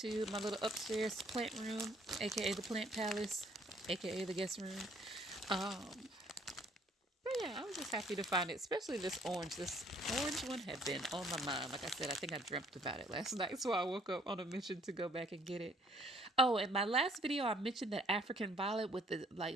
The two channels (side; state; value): both; normal; correlation 0.62